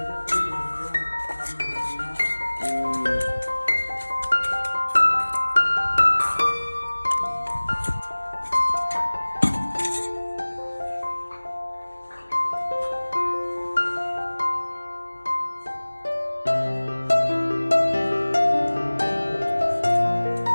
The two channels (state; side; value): inverted; both; correlation -1.00